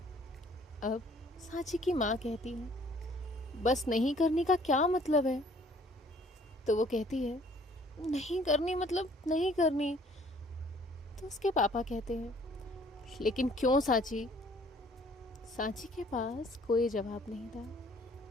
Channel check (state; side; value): normal; both; correlation 0.58